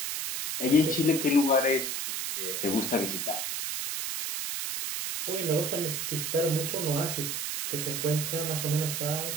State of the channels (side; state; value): right; noise; hiss, 2 dB below the sound